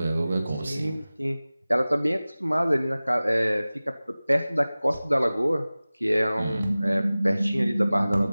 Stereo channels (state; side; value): inverted; both; correlation -0.98